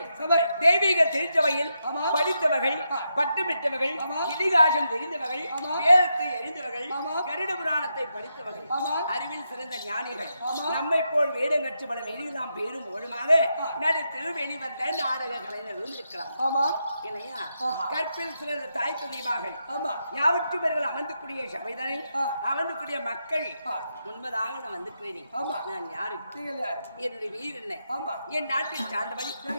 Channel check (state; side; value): inverted; both; correlation -0.84